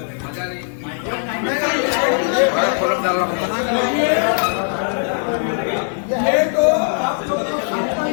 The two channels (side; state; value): right; silent; digital silence